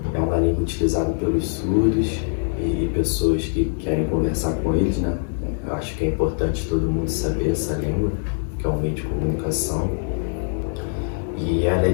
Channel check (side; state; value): right; silent; 64 dB below the other